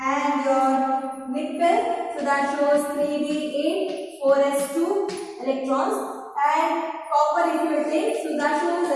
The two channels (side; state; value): both; identical; correlation 1.00